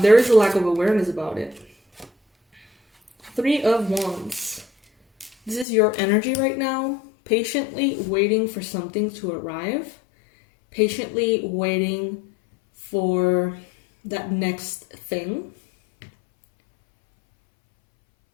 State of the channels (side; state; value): right; drops out; at 5.7 s